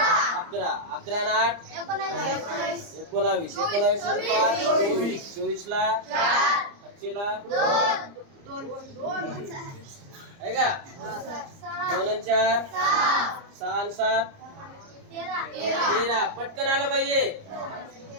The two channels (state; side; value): late; left; 30 ms